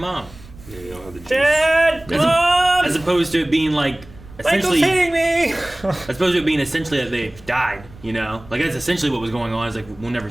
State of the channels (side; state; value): right; noise; rumble, 21 dB below the sound